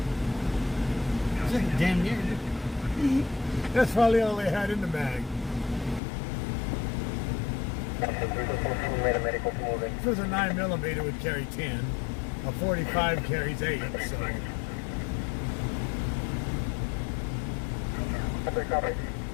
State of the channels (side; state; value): right; drops out; at 6.0 s